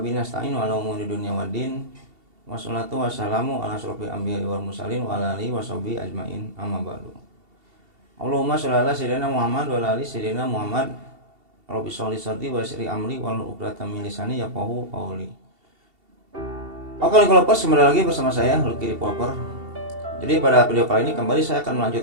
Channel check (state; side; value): late; left; 2.7 ms